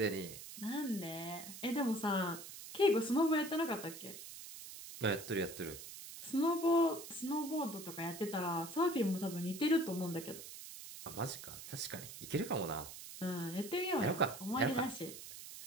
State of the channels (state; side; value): noise; right; hiss, 12 dB below the sound